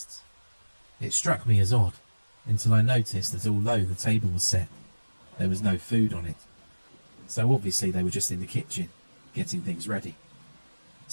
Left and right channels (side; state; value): both; inverted; correlation -1.00